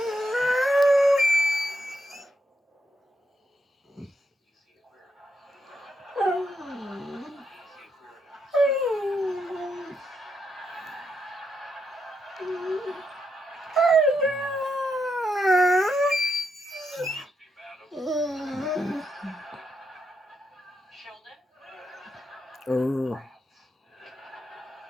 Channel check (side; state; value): both; normal; correlation 0.81